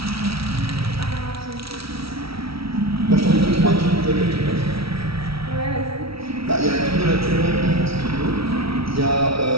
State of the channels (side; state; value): left; late; 0.76 ms